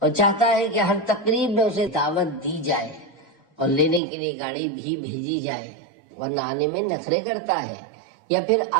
اور چاہتا ہے کہ ہر تقریب میں اسے دعوت دی جائے اور لینے کے لیے گاڑی بھی بھیجی جائے، ورنہ آنے میں نخرے کرتا ہے یا پھر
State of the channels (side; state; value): left; drops out; at 4.0 s